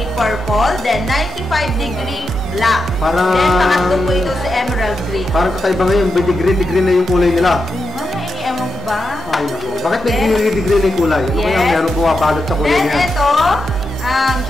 purple, then 95-degree black. Then, pangatlo po ito sa emerald green. Parang kakaiba ngayon, degree na yung kulay nila. Ewan ko ba? Ay, naku. Bakit may degree na yung kulay? Ano kaya meron bumabalot sa kulay niya? Then, ito, ang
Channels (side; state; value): both; normal; correlation 0.87